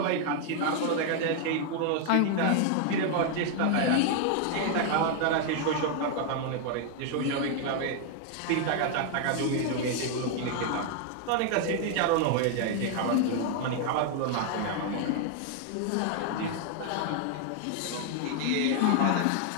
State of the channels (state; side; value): different; both; correlation 0.00